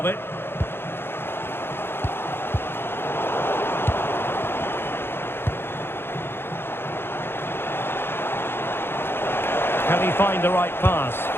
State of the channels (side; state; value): right; late; 0.11 ms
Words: it. Can he find the right pass?